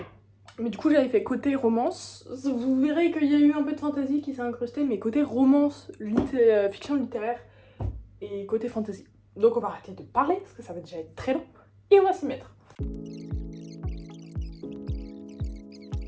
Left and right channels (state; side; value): identical; both; correlation 1.00